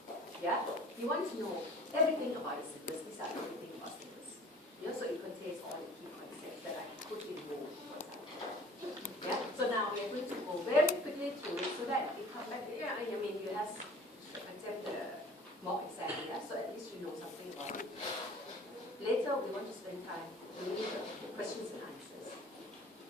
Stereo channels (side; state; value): both; normal; correlation 0.46